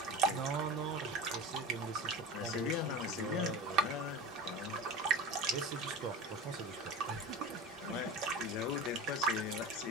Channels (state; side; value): normal; both; correlation 0.32